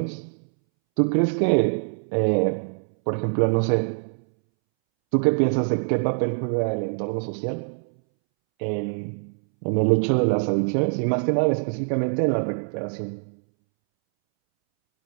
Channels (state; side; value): silent; left; 63 dB below the other